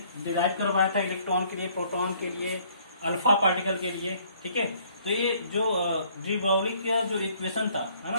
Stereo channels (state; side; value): inverted; both; correlation -0.61